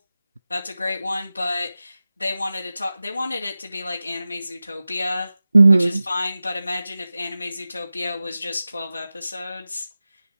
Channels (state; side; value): inverted; both; correlation -0.95